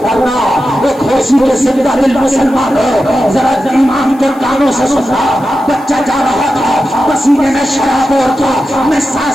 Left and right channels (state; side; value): noise; left; hiss, 27 dB below the sound